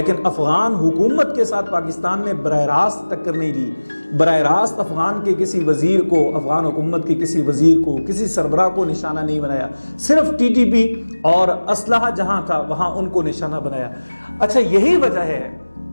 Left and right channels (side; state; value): both; inverted; correlation -1.00